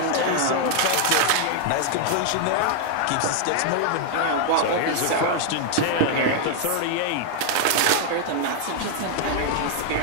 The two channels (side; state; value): both; different; correlation 0.00